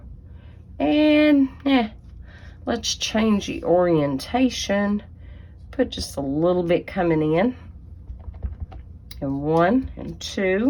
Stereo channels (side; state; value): both; identical; correlation 1.00